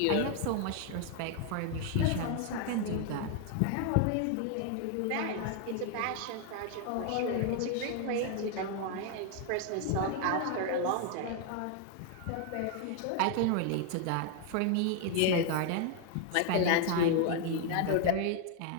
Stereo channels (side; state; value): both; different; correlation 0.00